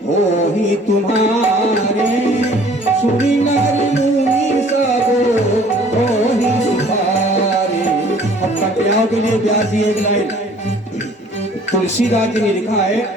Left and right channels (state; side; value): normal; both; correlation 0.54